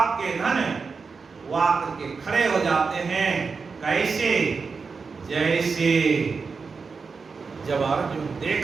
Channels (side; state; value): left; quieter; 4.9 dB